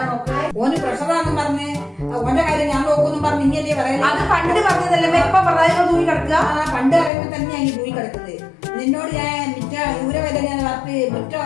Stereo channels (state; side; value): drops out; right; at 7.1 s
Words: നോക്കല്. ഓന് പ്രഷറാണെന്ന് പറഞ്ഞ് ഓന്റെ കാര്യം ഞാൻ നോക്കുന്നും പറഞ്ഞ് ഇനിയല്ലേ പറയുന്നത്. അത് പണ്ട് പറഞ്ഞതല്ലേ ഇപ്പൊ പറയാൻ തൂങ്ങി കിടക്കുക. പണ്ട് പറയുമ്പോ തന്നെയാണ് ഈ പോയി കിടക്കുന്നത്. നിന്നോട് ഞാൻ മിറ്റ ഊരവേദന ഞാൻ വറുത്ത് മുറ്റ